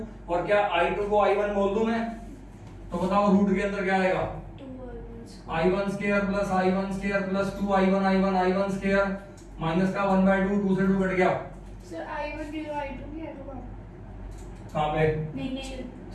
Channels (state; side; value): identical; both; correlation 1.00